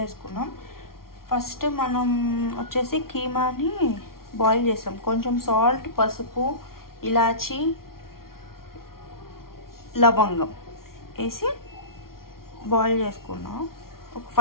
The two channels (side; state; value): right; late; 0.93 ms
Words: వేసుకున్నాం. ఫస్ట్ మనం వచ్చేసి కీమాని బాయిల్ చేసాం. కొంచెం సాల్ట్, పసుపు, ఇలాచి, లవంగం వేసి బాయిల్ చేసుకున్నాం. ఒక